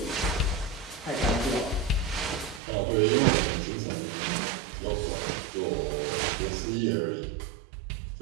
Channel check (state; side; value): drops out; left; at 2.6 s